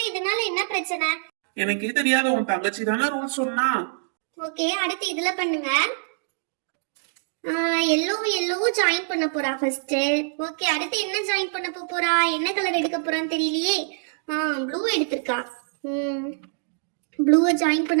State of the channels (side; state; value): left; silent; digital silence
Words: இதனால என்ன பிரச்சனை? எனக்கே தெரியாத, உன் தங்கச்சி தானே ரூல் சொன்னா. ஓகே, அடுத்து இதுல பண்ணுங்க. எல்லோ ஜாயின் பண்ண போறா ஃபர்ஸ்ட். ஓகே, அடுத்து என்ன ஜாயின் பண்ண போறா? என்ன கலர் எடுக்க போறான்னு தெரியலையே. ப்ளூ எடுத்திருக்கா. ப்ளூவை ஜாயின்